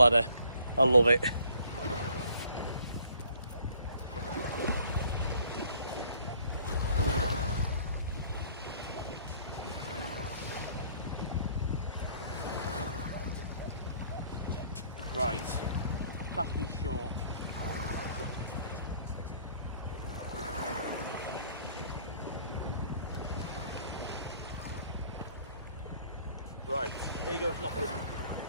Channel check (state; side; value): inverted; both; correlation -0.58